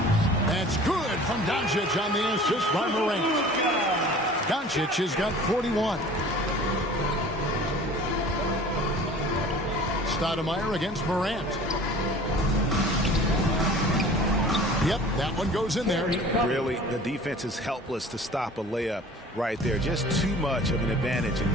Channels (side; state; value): both; normal; correlation 0.45